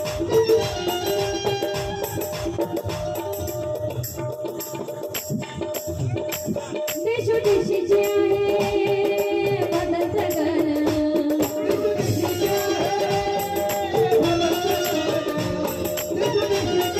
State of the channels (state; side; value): identical; both; correlation 1.00